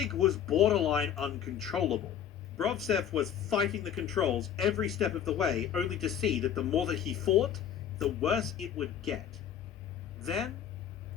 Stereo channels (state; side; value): quieter; right; 9.2 dB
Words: was borderline uncontrollable. Brovtsev was fighting the controls every step of the way, only to see that the more that he fought, the worse it would get. Then,